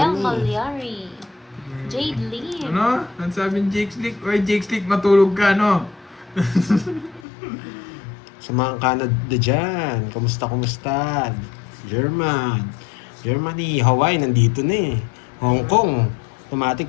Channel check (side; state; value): right; drops out; at 7.2 s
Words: eh. Malyari. Jade Lim. Ano? Ang sabi ni Jake Slick, oy Jake Slick, matulog ka, no? Sa mga Canada dyan. Kumusta? Germany, Hawaii, nandito na eh. Hong Kong, automatic.